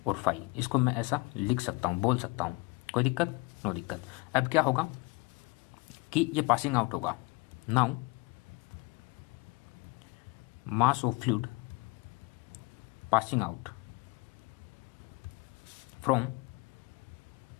और फाई, इसको मैं ऐसा लिख सकता हूँ, बोल सकता हूँ, कोई दिक्कत, नो दिक्कत। अब क्या होगा कि ये पासिंग आउट होगा। Now mass of fluid passing out from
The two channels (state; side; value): quieter; right; 24.5 dB